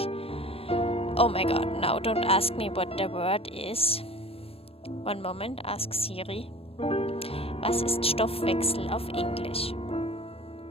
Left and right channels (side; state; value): right; late; 0.28 ms